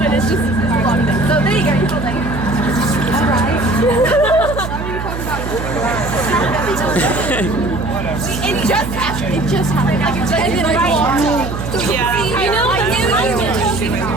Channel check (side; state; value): right; noise; hum, 6 dB below the sound